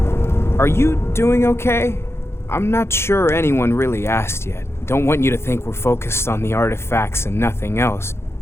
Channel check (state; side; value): late; right; 0.12 ms